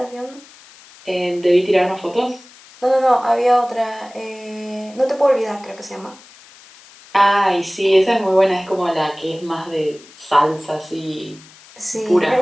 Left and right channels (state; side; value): noise; left; hiss, 23 dB below the sound